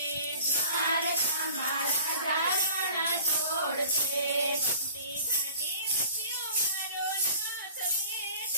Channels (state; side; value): inverted; both; correlation -0.46